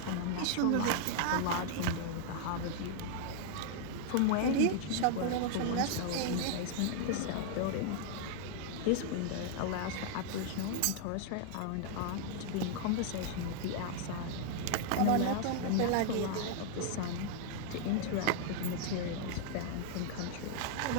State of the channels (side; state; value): both; different; correlation 0.00